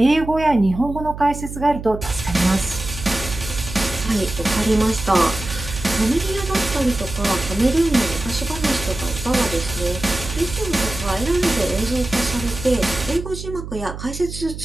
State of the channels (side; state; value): right; noise; hum, 9 dB below the sound